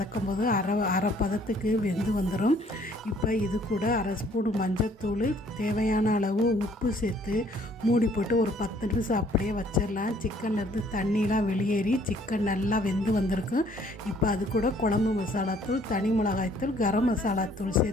போது அரை பதத்துக்கு வெந்து வந்துடும். இப்போ இது கூட அரை ஸ்பூன் மஞ்சத்தூள், தேவையான அளவு உப்பு சேர்த்து மூடி போட்டு ஒரு 10 நிமிஷம் அப்படியே வச்சிடலாம். சிக்கன்லேருந்து தண்ணிலாம் வெளியேறி சிக்கன் நல்லா வெந்து வந்திருக்கும். இப்போ அது கூட குழம்பு மசாலாத்தூள், தனி மிளகாய்த்தூள், கரம் மசாலாத்தூள்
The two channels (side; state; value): both; normal; correlation 0.61